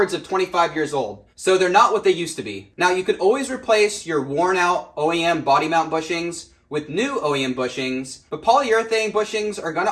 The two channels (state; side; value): identical; both; correlation 1.00